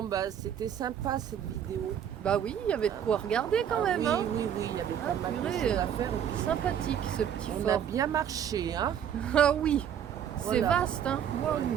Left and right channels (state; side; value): quieter; left; 9.1 dB